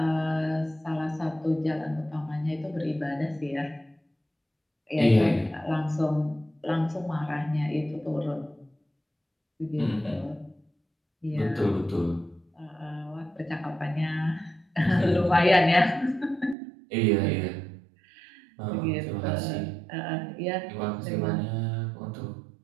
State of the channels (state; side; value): drops out; left; at 16.6 s